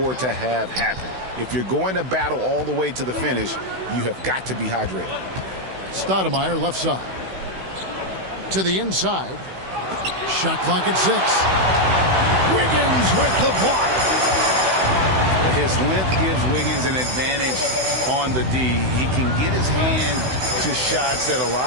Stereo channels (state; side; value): late; left; 16 ms